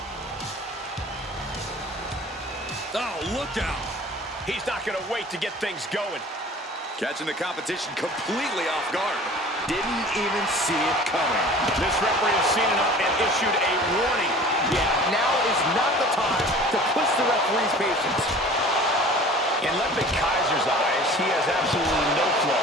Oh, look out! He's not going to wait to get things going. Catching the competition completely off guard. Didn't even see it coming. This referee has seen enough and issued a warning. Yeah, now is not the time to push the referee's patience. In Ludwig Kaiser's eyes, he has absolutely no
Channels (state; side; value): normal; both; correlation 0.44